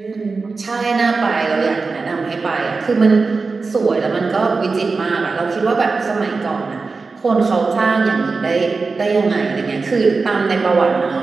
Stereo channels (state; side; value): quieter; left; 4.2 dB